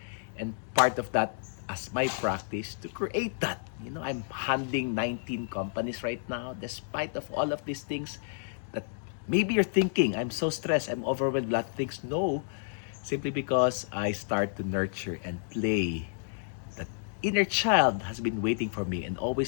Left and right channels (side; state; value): right; silent; digital silence